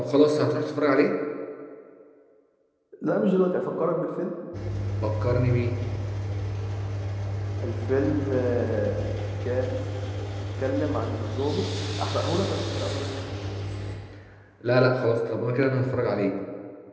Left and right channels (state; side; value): identical; both; correlation 1.00